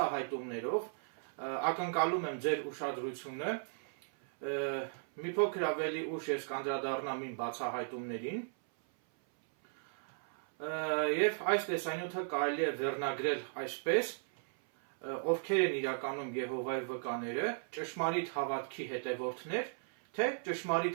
ակնկալում եմ ձեր ուշադրությունը, մի փոքր ավելի ուշ ես կանդրադառնամ իմ բացահայտումներին, և այս տեսանյութը կարելի է վերնագրել այսպես, ովքեր են իրականում Եհովայի վկաները, ճշմարիտ հավատքի հետևորդներ, թե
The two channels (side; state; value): left; silent; 54 dB below the other